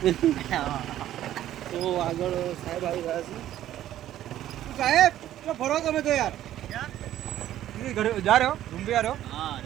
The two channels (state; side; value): quieter; left; 12.6 dB